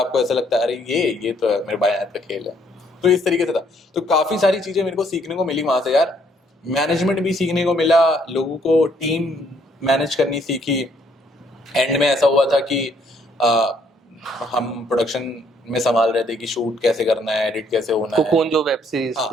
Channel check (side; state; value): both; normal; correlation 0.67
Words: ऐसा लगता है अरे ये तो है मेरे बाएं हाथ का खेल है, तो इस तरीके से था। तो काफ़ी सारी चीज़ें मेरे को सीखने को मिली वहाँ से यार, मैनेजमेंट भी सीखने को मिला, लोगों को टीम मैनेज करनी सीखी। एंड में ऐसा हुआ था कि आ, हम प्रोडक्शन में संभाल रहे थे कि शूट कैसे करना है, एडिट कैसे होना है। कोकोन जो वेब सीरीज हाँ,